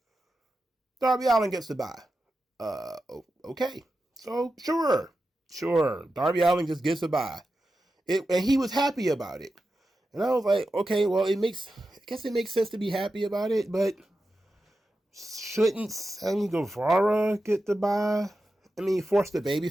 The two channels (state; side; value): normal; both; correlation 0.91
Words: Darby Allin gets the bye. Okay. So, sure. Darby Allin just gets a bye. And he was happy about it. And I was like, okay, well, I guess it makes sense to be happy about it, but shouldn't Sammy Guevara get the bye? I mean, force the baby